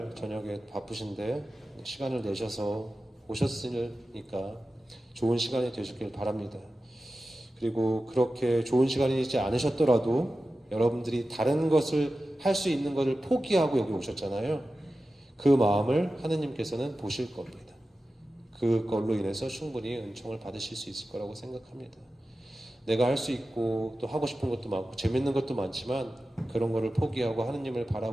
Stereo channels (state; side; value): normal; both; correlation 0.94